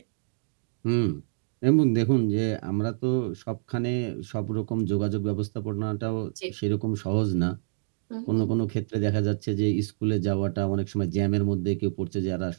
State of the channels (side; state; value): left; silent; digital silence